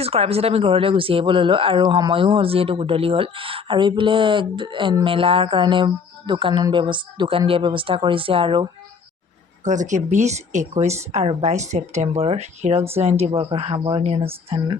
কৰাৰ পিছত আমি ঘৰলৈ গুচি আহিব ল'লোঁ আৰু সময়ো হ'ল যিহেতু গধূলি হ'ল আৰু এইফালে মেলাৰ কাৰণে দোকান দিয়াৰ ব্যৱস্থা কৰিছে আৰু গতিকে 20, 21 আৰু 22 ছেপ্টেম্বৰৰ হীৰক জয়ন্তী বৰ্ষৰ সামৰণি অনুষ্ঠান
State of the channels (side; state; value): right; quieter; 5.6 dB